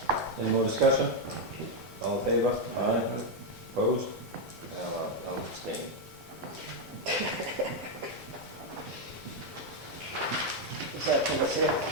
Any more discussion? All in favor? Aye. Opposed? I'll abstain. Is that for the sale?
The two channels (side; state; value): both; normal; correlation 0.02